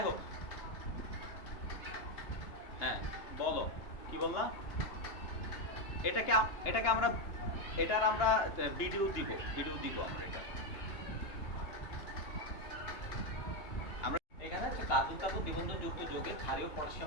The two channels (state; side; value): late; right; 2.8 ms